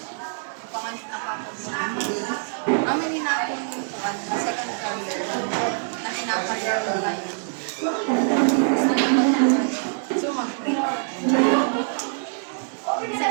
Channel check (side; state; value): left; silent; 55 dB below the other